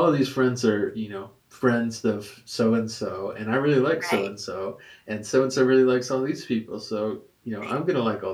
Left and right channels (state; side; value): identical; both; correlation 1.00